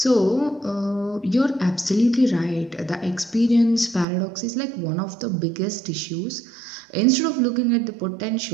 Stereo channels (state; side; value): drops out; left; at 4.0 s